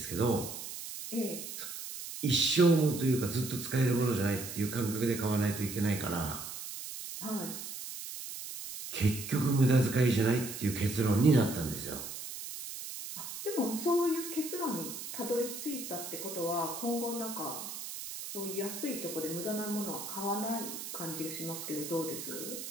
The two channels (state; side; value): noise; right; hiss, 8 dB below the sound